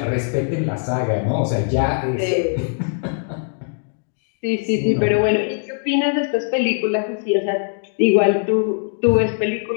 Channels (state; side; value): silent; right; digital silence